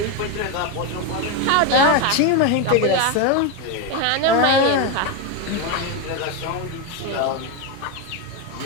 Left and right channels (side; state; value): both; different; correlation 0.03